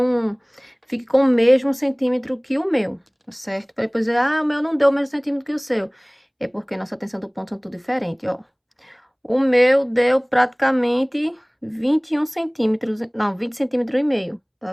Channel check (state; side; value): identical; both; correlation 1.00